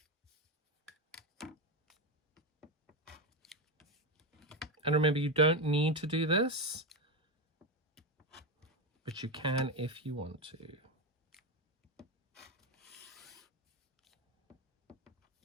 And remember, you don't need to do this, but you can if you want to.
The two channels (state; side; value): normal; both; correlation 0.12